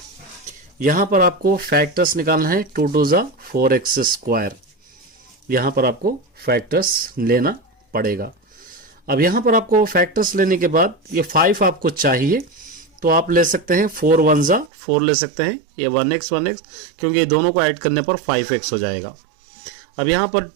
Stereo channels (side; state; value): left; drops out; at 14.7 s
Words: यहां पर आपको फैक्टर्स निकालना है, 2 × 4x², यहां पर आपको फैक्टर्स लेना पड़ेगा। अब यहां पर आपको फैक्टर्स लेने के बाद ये 5 आपको चाहिए तो आप ले सकते हैं 4 × 1 = 4 ले सकते हैं, ये 1x क्योंकि ये दोनों को ऐड करने पर 5x हो जाएगा। अब यहां पर